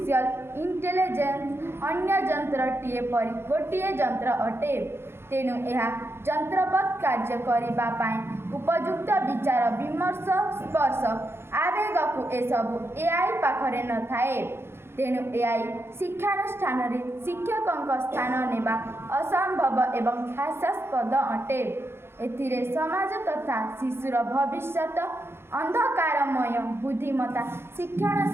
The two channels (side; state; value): left; late; 0.12 ms